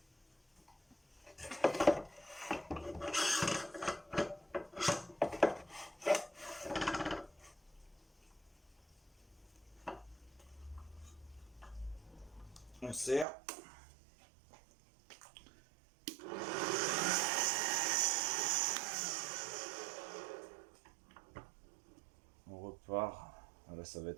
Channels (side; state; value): left; drops out; at 13.2 s